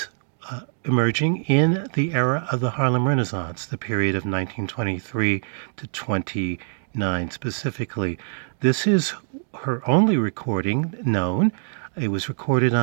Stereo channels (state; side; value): silent; left; 61 dB below the other